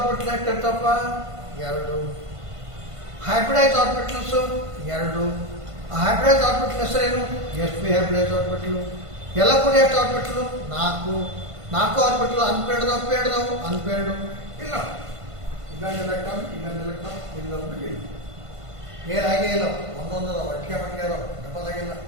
ಎಷ್ಟಿರ್ತಪ್ಪ? ಎರಡು. ಹೈಬ್ರಿಡೈಸ್ ಆರ್ಬಿಟಲ್ಸ್ ಎರಡು. ಹೈಬ್ರಿಡೈಸ್ ಆರ್ಬಿಟಲ್ ಹೆಸರೇನು? sp hybridise orbital. ಎಲ್ಲ ಕೂಡ ಎಷ್ಟು ಆರ್ಬಿಟಲ್? ನಾಲ್ಕು. ನಾಲ್ಕು ಆರ್ಬಿಟಲ್ ಅನ್ಪೇರ್ಡ್ದವು ಪೇರ್ಡ್ದವು ಅನ್ಪೇರ್ಡು ಇಲ್ಲ. ಇನ್ನೊಂದು ಎಲೆಕ್ಟ್ರಾನ್ ಇನ್ನೊಂದು ಎಲೆಕ್ಟ್ರಾನ್ ಇಲ್ಲೊಂದು ಇಲ್ಲ. ಪೇರ್ ಆಗೇ ಇಲ್ಲ. ಒಂದೊಂದು ಒಟ್ಟಿಗೆ ಮಟ್ಟಿಗೆ ಅದಾವ, ಡಬಲ್ ಆಗಿಲ್ಲ.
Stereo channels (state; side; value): late; left; 1.5 ms